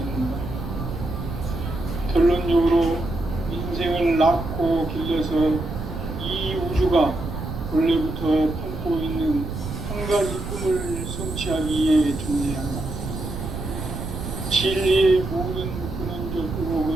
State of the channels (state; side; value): noise; right; rumble, 6 dB below the sound